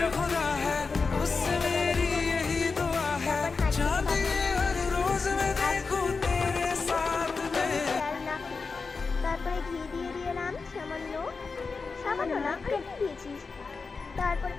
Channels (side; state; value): right; quieter; 4.5 dB